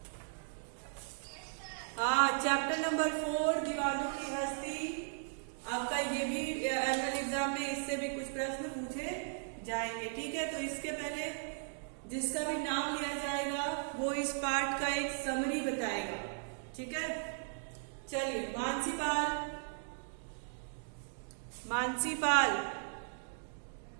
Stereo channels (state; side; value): silent; left; digital silence